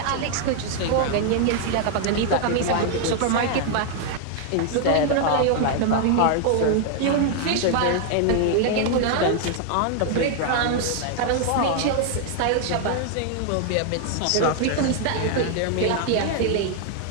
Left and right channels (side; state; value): both; different; correlation 0.00